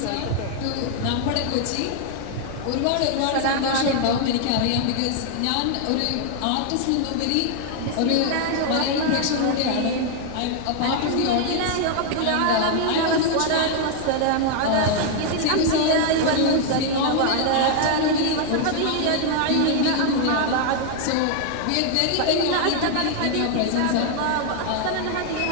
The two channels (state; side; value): different; both; correlation 0.00